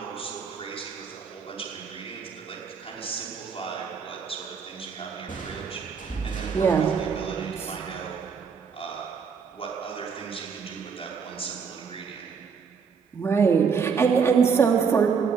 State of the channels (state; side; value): quieter; left; 6.0 dB